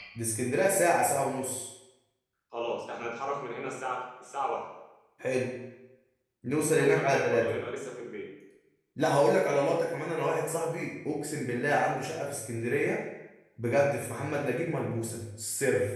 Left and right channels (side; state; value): both; identical; correlation 1.00